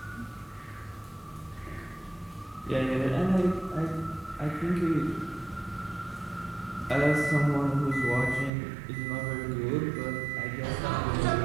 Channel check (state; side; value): drops out; left; at 8.5 s